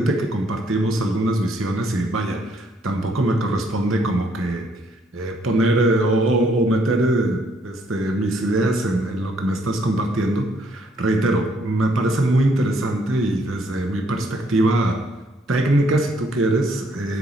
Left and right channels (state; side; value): normal; both; correlation 0.68